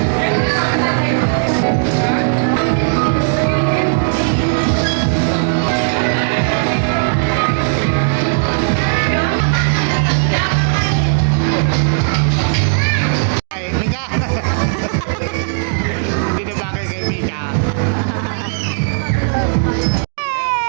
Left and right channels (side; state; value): left; silent; digital silence